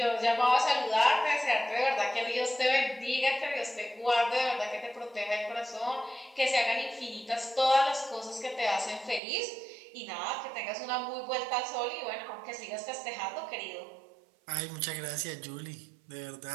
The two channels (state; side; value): drops out; left; at 9.2 s